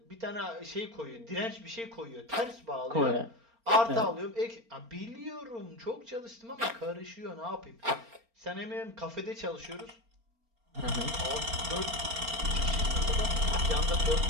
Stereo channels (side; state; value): left; late; 4.3 ms